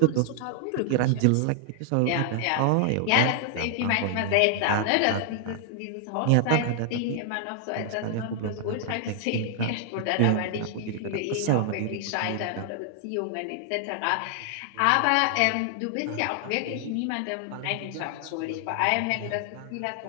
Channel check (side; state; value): both; different; correlation 0.00